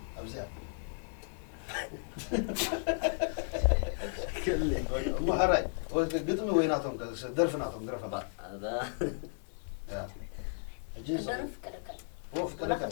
أبزيا محري قدمي ويناتهم درفناتهم درفنا هذا يا جيز درف كلكل وف ولا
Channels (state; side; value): silent; right; digital silence